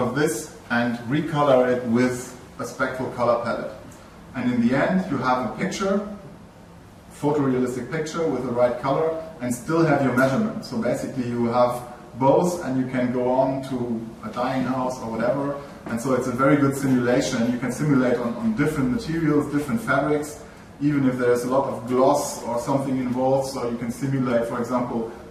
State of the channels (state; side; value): identical; both; correlation 1.00